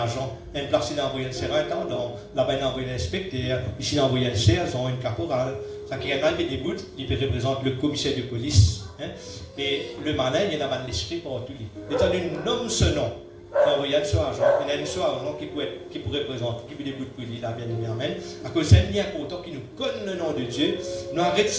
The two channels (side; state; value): both; identical; correlation 1.00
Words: une place, il a envoyé un surintendant, là-bas il a envoyé un inspecteur, ici il a envoyé un sergent, une caporale. Ça qui est arrivé des bouts, il représente le commissaire de police. Hein? Et le malin, il a un esprit pour lui. Étant donné nomme ce nom, il a envoyé un suragent, il y a un suragent qui pourrait représenter, qui peut des bouts pour lui, là, bien aimé, amen. À cause c'est un lien important qui nous connaît le nom de Dieu, nous arrêtons de